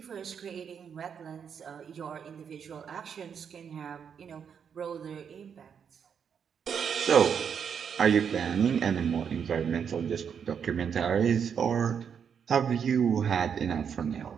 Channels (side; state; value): left; quieter; 7.3 dB